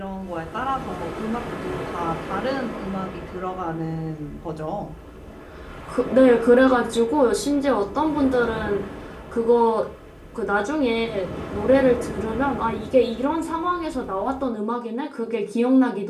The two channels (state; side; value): identical; both; correlation 1.00